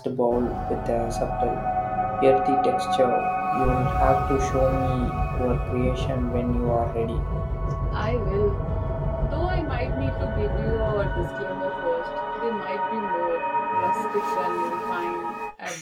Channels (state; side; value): identical; both; correlation 1.00